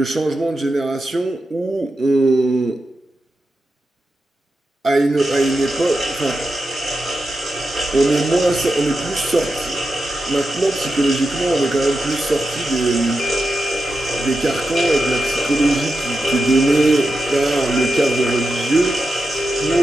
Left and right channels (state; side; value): normal; both; correlation 0.89